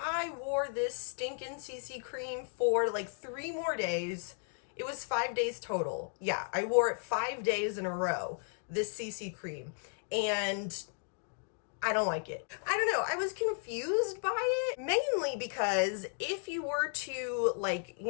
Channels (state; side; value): silent; right; 55 dB below the other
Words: wore this stinking CC cream for like 3 more days. It was 5 days total. Yeah, I wore it 5 days in a row, this CC cream. And I don't like it. I don't know. I was confused by it, mainly because if you were to like,